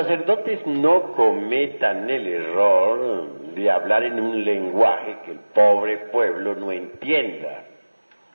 no cometan el error de hablar en un lenguaje que el pobre pueblo no entienda.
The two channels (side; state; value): both; inverted; correlation -1.00